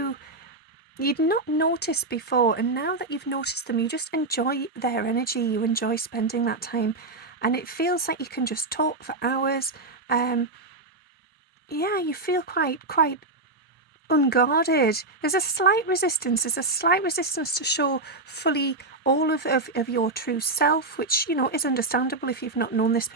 you'd not noticed before, and now that you've noticed them, you just enjoy their energy, you enjoy spending that time, and it feels like you can just talk for hours. Yeah, you feel quite unguarded. There's a slight resistance to show fully all of your true self, which is understandable if you've not known this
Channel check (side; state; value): left; quieter; 3.1 dB